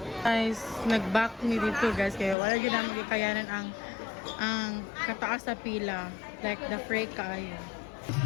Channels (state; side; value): drops out; right; at 2.4 s